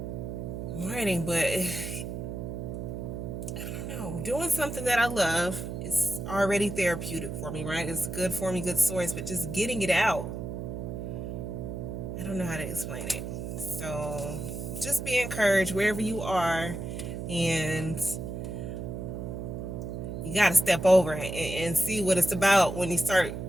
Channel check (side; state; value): right; noise; hum, 6 dB below the sound